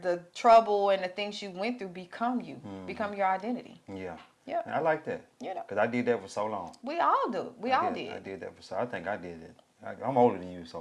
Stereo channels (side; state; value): both; identical; correlation 1.00